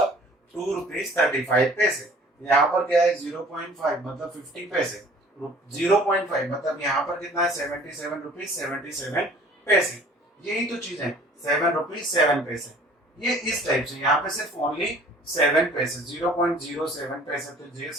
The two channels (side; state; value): both; normal; correlation 0.51